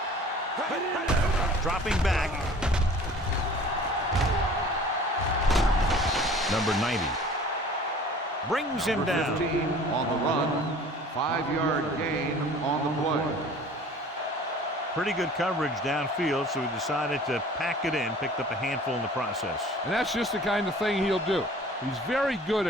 Dropping back. Number 90 brings him down. 15 on the run. 5-yard gain on the play. Pretty good coverage downfield, so he decided to pack it in, picked up a handful in the process. And that's just the kind of thing he'll do. He's very good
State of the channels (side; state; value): both; normal; correlation 0.47